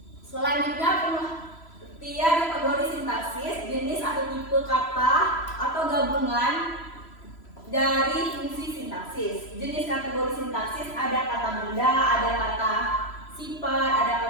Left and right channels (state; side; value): late; right; 3.0 ms